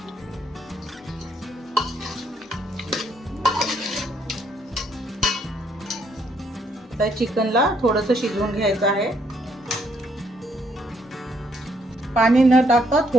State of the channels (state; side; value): normal; both; correlation 0.71